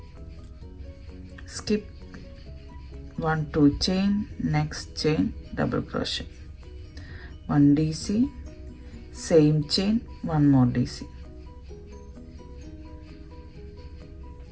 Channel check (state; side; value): identical; both; correlation 1.00